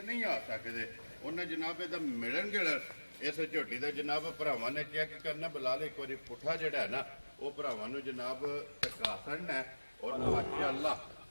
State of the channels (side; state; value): both; inverted; correlation -1.00